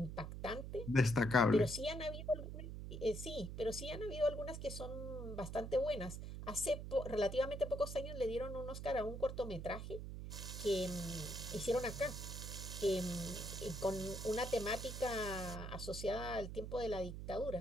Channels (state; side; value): noise; right; hum, 7 dB below the sound